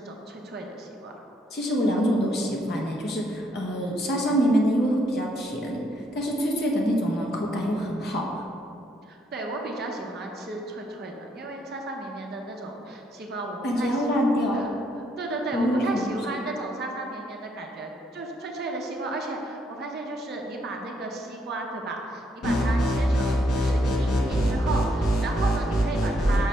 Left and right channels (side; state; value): both; normal; correlation 0.73